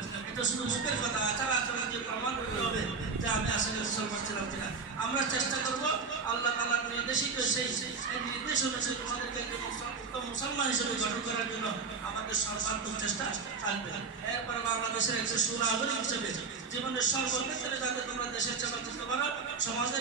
এটা শুধু মুখের কথা, আচার আচরণ দিয়ে প্রমাণ করতে হবে যে আমি আসলে মুসলমান ছিলাম কিনা। আমরা চেষ্টা করবো আল্লাহ তাআলার নির্দেশিত সেই নির্দেশ অনুযায়ী তোমাদেরকে একজন উত্তম মুসলমান হিসেবে গঠন করার জন্য আমাদের সর্বাত্মক চেষ্টা থাকবে। এরপরে বাংলাদেশের একজন সুনাগরিক হিসেবে জীবনের সর্বক্ষেত্রে যাতে তোমরা দেশের সেবা করতে পারো,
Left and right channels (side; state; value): left; quieter; 5.0 dB